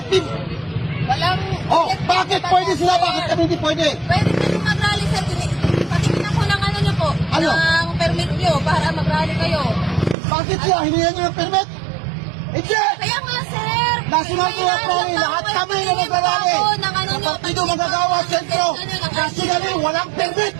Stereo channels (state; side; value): drops out; left; at 10.2 s